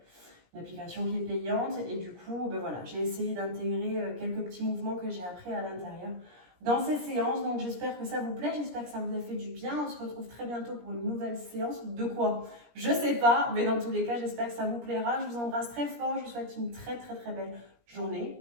Une application qui est payante. Et du coup, ben voilà, j'ai essayé d'intégrer quelques petits mouvements que j'ai appris à l'intérieur dans ces séances. Donc j'espère que ça vous plaît, j'espère que ça vous a fait du bien. On se retrouve très bientôt pour une nouvelle séance. De quoi? Je sais pas, mais dans tous les cas, j'espère que ça vous plaira. Je vous embrasse très fort, je vous souhaite une très très très belle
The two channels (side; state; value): left; late; 17 ms